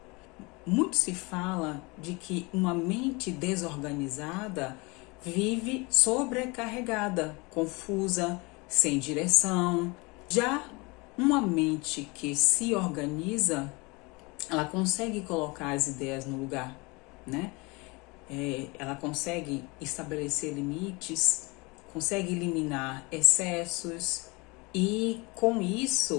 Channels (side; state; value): right; quieter; 26.6 dB